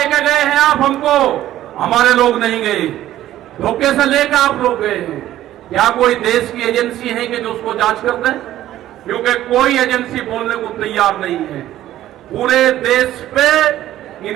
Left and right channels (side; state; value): left; quieter; 13.4 dB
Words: गए हैं आप हमको, हमारे लोग नहीं गए, धोखे से लेकर आप लोग गए हैं। क्या कोई देश की एजेंसी है कि जो उसको जांच कर दे? क्योंकि कोई एजेंसी बोलने को तैयार नहीं है। पूरे देश पे